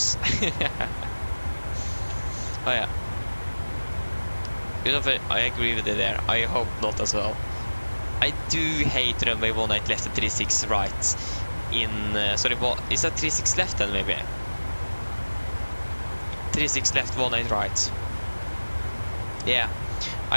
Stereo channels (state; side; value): inverted; both; correlation -1.00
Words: Oh yeah. I agree with you there. I hope not as well. I do hate runway 18 left and 36 right. Sorry, what is that 36 left then maybe? 36 left, 18 right. Yeah,